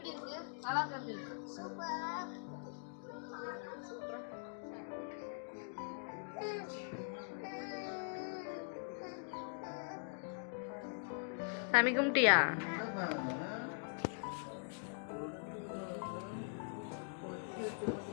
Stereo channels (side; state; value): right; silent; digital silence